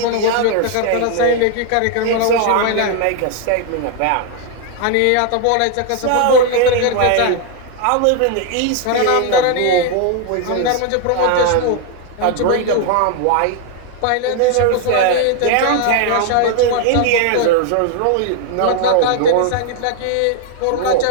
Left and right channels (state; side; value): different; both; correlation 0.00